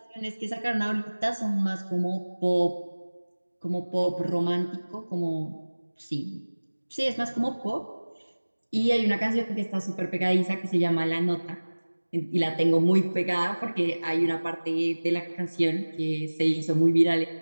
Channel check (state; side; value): inverted; both; correlation -1.00